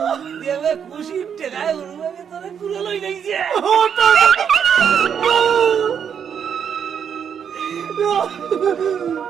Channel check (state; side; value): quieter; left; 7.8 dB